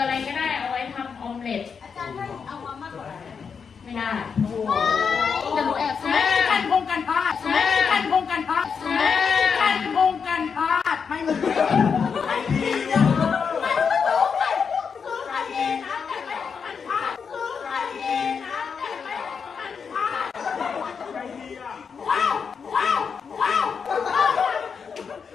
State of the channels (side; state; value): right; quieter; 6.1 dB